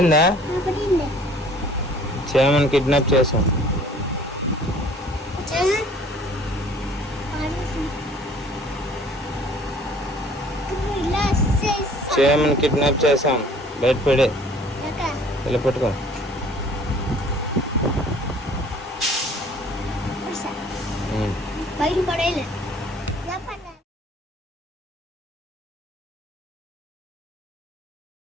చేయమని కిడ్నాప్ చేసాం. చేయమని కిడ్నాప్ చేసాం. బయట పడే ఇలా పట్టుకో. బయట పడేలే.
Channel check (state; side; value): normal; both; correlation 0.53